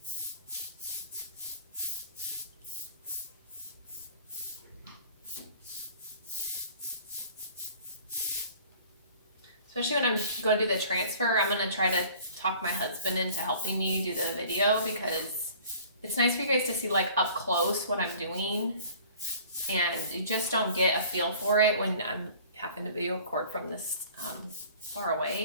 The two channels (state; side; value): inverted; both; correlation -0.49